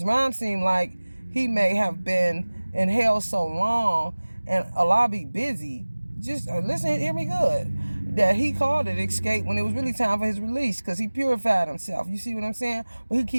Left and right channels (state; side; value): inverted; both; correlation -1.00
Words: Ron seemed like he may have been in hell so long and Allah be busy. Just listen, hear me good. That he called it escape when it was really time for his release, because he purified himself. You see what I'm saying? But he